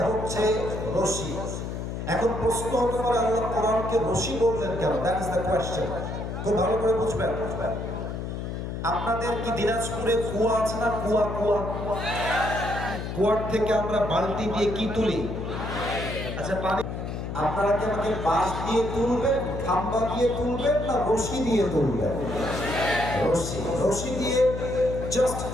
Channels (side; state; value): left; noise; hum, 5 dB below the sound